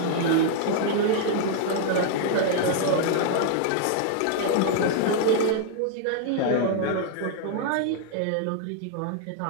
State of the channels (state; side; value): different; both; correlation -0.01